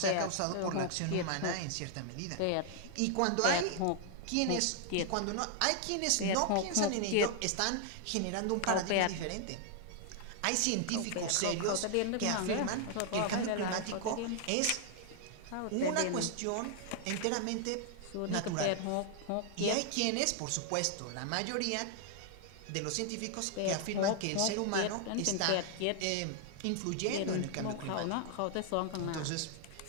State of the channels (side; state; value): both; different; correlation 0.00